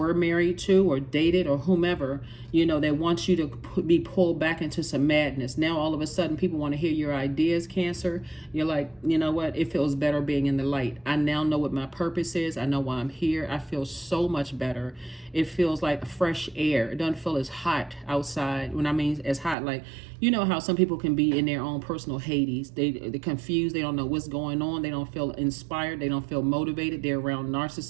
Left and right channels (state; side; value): drops out; left; at 19.6 s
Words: married to, or dated, or whomever, that wants you to be pulled back into some madness. Now, all of a sudden, people want to hear your ideas, Cancer. You're like, you know what? It feels better being in the light. I now know what my purpose is. I know why I'm here. I feel so much better. It feels like fresh air. It doesn't feel as hot outside. When I mean as hot, like, how some people can be in their own personal Hades. They're confused. They don't know what's going on. They don't feel inspired. They don't feel motivated. They're around